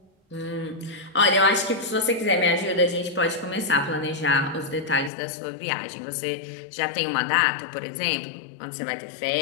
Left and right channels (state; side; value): drops out; right; at 5.1 s